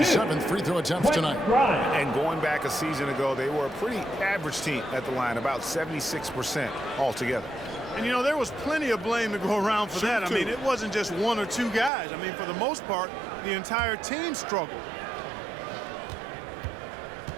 7th free throw attempts tonight. And going back a season ago, they were a pretty average team at the line, about 76% altogether. And, you know, there was plenty of blame to go around for that. I mean, it wasn't just 1 or 2 guys. I mean, for the most part, the entire team struggled.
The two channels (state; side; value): drops out; left; at 11.9 s